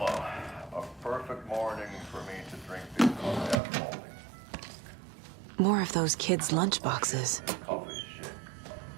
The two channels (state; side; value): drops out; left; at 3.6 s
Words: A perfect morning for me to drink this coffee after all these More of those kids' lunchboxes. coffee shit.